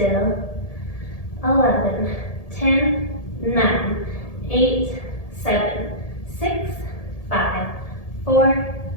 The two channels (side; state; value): right; late; 1.8 ms